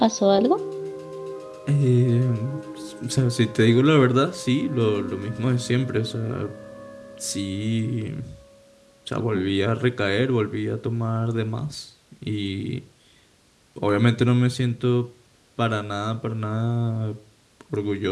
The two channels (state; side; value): identical; both; correlation 1.00